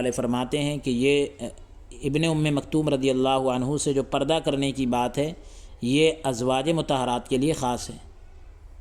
فرماتے ہیں کہ یہ ابن ام مکتوم رضی اللہ عنہ سے جو پردہ کرنے کی بات ہے یہ ازواج مطہرات کے لیے خاص ہے،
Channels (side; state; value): both; identical; correlation 1.00